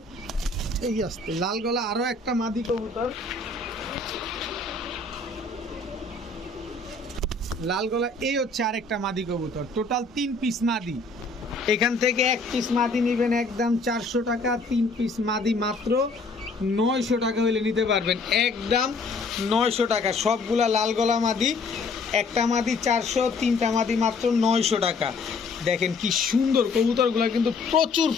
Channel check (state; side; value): quieter; right; 3.7 dB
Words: এই আসতে লাল গলা আরও একটা মাদি কবুতর, লাল গলা। এই হচ্ছে আরেকটা মাদি কবুতর, টোটাল 3 পিস মাদি। এখান থেকে 1 পিস মাদি নেবেন একদম 400 টাকা, 3 পিস মাদি মাত্র 900 টাকা হলে নিতে পারবেন, একদম 900 টাকা। সবগুলা লাল গলা মাদি, একটা মাদি 400, 3টা মাদি মাত্র 900 টাকা। দেখেন কি সুন্দর কবুতরগুলো, কিন্তু প্রচুর